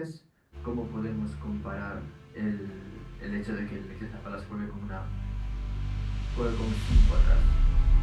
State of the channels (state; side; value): identical; both; correlation 1.00